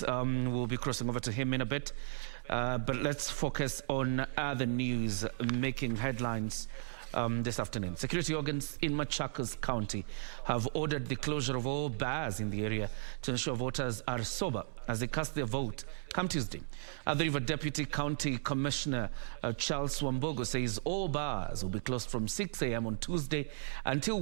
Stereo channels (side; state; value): left; silent; digital silence